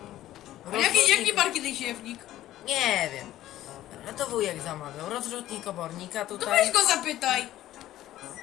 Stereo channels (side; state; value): right; quieter; 14.0 dB